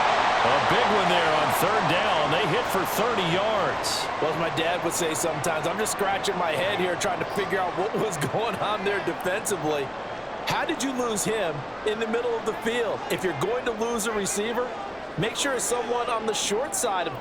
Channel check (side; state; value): both; identical; correlation 1.00